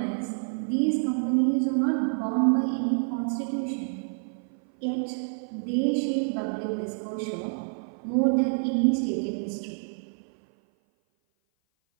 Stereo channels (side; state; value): left; silent; 56 dB below the other